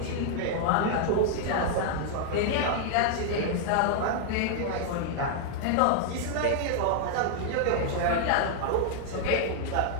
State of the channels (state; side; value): different; both; correlation -0.01